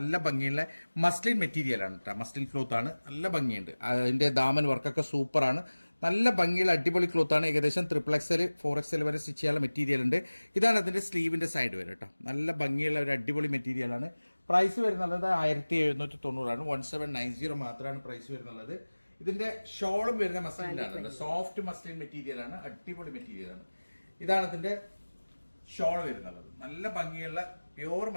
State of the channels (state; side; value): inverted; both; correlation -1.00